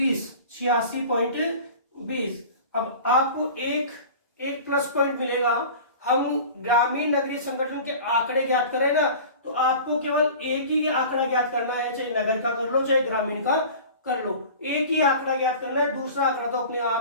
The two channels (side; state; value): both; inverted; correlation -0.39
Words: अब आपको एक प्लस पॉइंट मिलेगा। हम ग्रामीण नगरीय संगठन के आंकड़े ज्ञात करें ना, तो आपको केवल एक ही आंकड़ा ज्ञात करना है, चाहे नगर का कर लो चाहे ग्रामीण का कर लो, एक ही आंकड़ा ज्ञात करना है। दूसरा आंकड़ा तो अपने